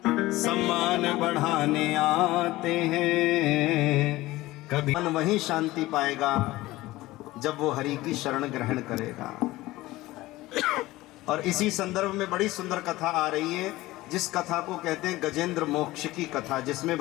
सम्मान बढ़ाने आते हैं। कभी मन वही शांति पाएगा जब वो हरि की शरण ग्रहण करेगा। और इसी संदर्भ में बड़ी सुंदर कथा आ रही है, जिस कथा को कहते हैं गजेंद्र मोक्ष की कथा, जिसमें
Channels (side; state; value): right; quieter; 18.2 dB